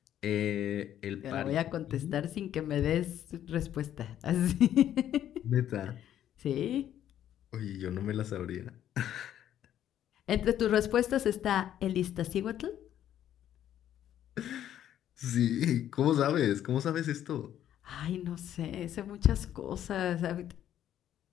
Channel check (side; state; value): right; quieter; 11.1 dB